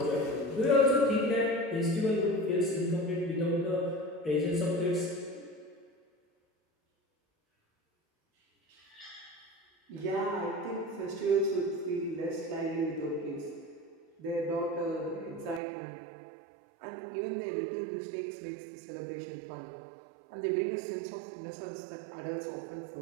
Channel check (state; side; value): drops out; left; at 15.6 s